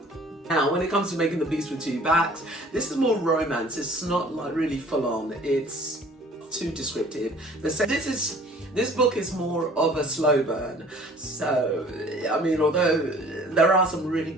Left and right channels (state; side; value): normal; both; correlation 0.51